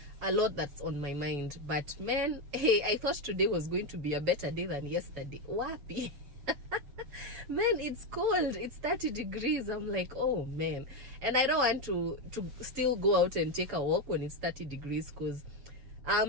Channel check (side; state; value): left; late; 7.1 ms